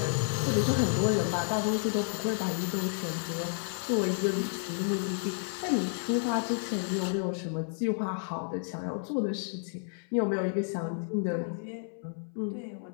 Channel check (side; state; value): right; silent; 57 dB below the other